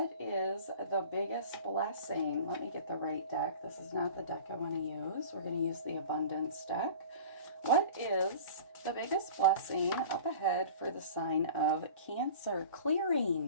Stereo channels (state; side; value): inverted; both; correlation -0.39